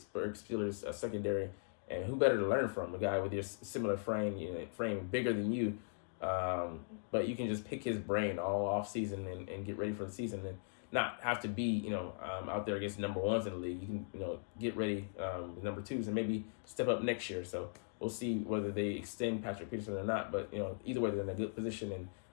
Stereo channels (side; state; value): right; silent; digital silence